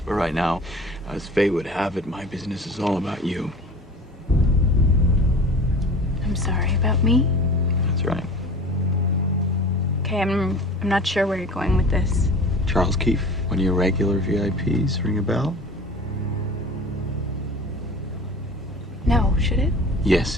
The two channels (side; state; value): both; normal; correlation 0.40